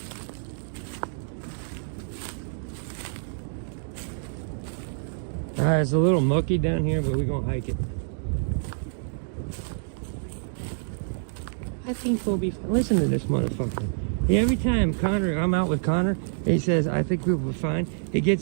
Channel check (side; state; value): left; silent; digital silence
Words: Alright, it's a little mucky down here, but we're gonna hike it. I think we'll be fine. Listen to this motherfucker. Every time I'm out with Connor, he says, I think we'll be fine. He